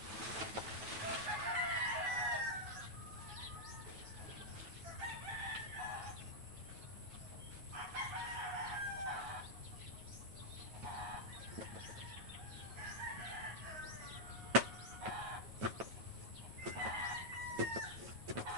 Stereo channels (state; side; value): late; left; 9.1 ms